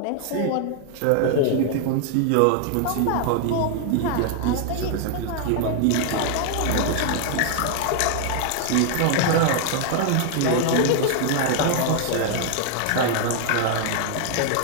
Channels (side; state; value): both; different; correlation 0.00